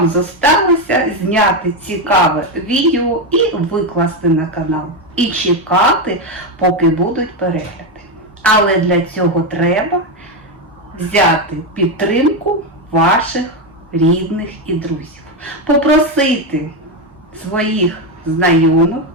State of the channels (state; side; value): normal; both; correlation 0.09